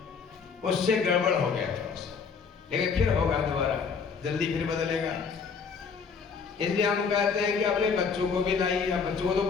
उससे गड़बड़ हो गया था, लेकिन फिर होगा दोबारा, जल्दी फिर बदलेगा। इसलिए हम कहते हैं कि अपने बच्चों को भी लाइए। अब बच्चों को तो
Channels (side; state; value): right; quieter; 5.7 dB